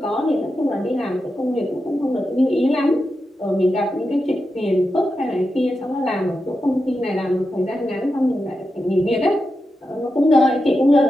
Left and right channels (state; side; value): normal; both; correlation 0.89